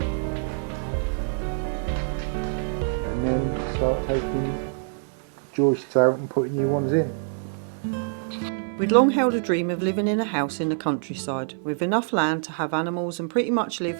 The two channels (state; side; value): silent; left; 61 dB below the other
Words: and then start taking joists out and putting new ones in. We'd long held a dream of living in a house in the countryside, with enough land to have animals and pretty much live